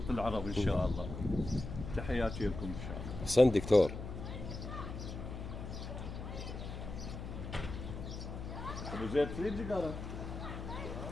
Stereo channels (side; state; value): left; noise; hum, 7 dB below the sound